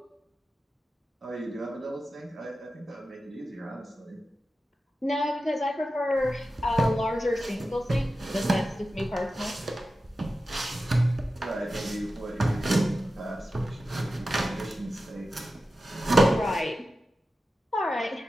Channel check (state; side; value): normal; both; correlation 0.92